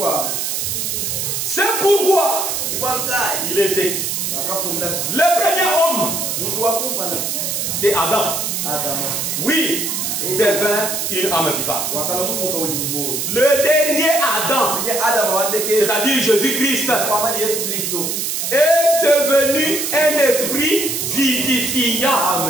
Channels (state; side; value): noise; right; hiss, 1 dB below the sound